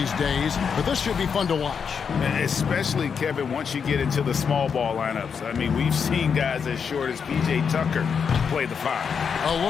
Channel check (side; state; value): right; quieter; 6.5 dB